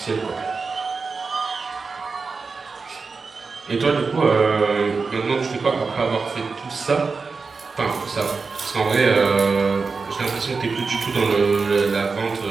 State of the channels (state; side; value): quieter; left; 4.6 dB